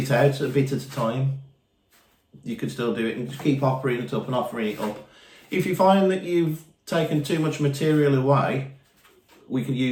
out a bit at a time, you could still do it and just keep offering it up and offering it up. If you find that you've taken too much material away, we can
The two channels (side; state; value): both; identical; correlation 1.00